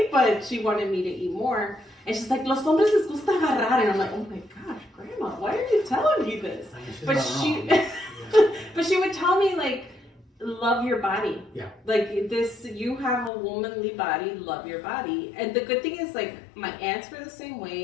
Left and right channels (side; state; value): right; drops out; at 13.3 s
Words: but she wanted me to eat more. And she's like, los hombres les gusta agarrar. And I'm like, oh my gosh, Grandma, why are you telling me this? I mean, she's But not she, wrong. but she would tell me, like, love your body. Yeah. Like, this, you have a womanly body, love your body. And the good thing is, like, my aunts were the same